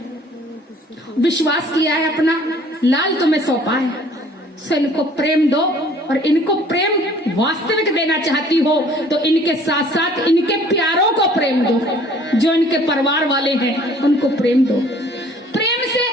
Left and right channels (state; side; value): normal; both; correlation 0.54